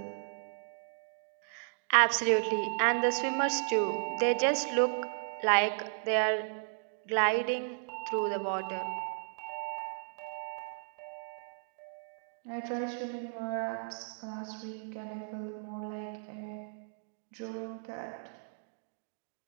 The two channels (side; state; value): left; silent; digital silence